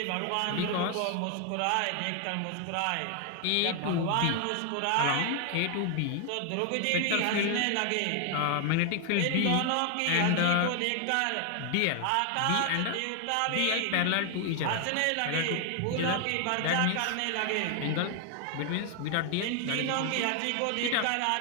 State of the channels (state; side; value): different; both; correlation 0.00